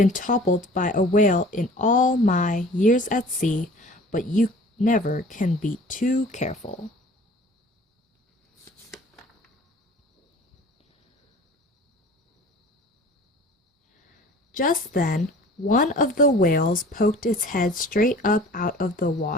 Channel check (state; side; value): normal; both; correlation 0.46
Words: toppled by a whale in all my years at sea, but you never can be too careful." Just then, one of the whales poked its head straight up out of the